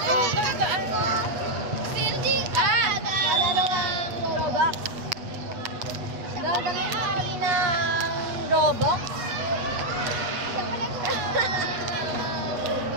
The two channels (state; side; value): late; left; 8.2 ms